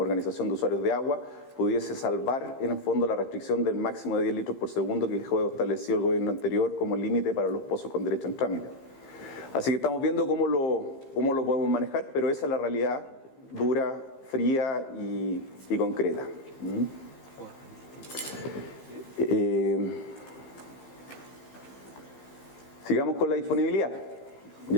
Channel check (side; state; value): right; late; 15 ms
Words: de usuarios de agua, pudiese salvar en el fondo la restricción del máximo de 10 litros por segundo que dejó establecido el gobierno anterior como límite para los pozos con derecho en trámite. Así que estamos viendo cómo lo podemos manejar, pero esa es la realidad dura, fría y concreta. Sigamos con la disponibilidad.